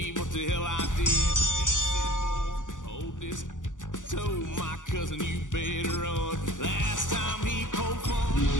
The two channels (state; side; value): late; right; 0.87 ms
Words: what the hell I did. Hold this. Told my cousin you better run. Last time he poked fun.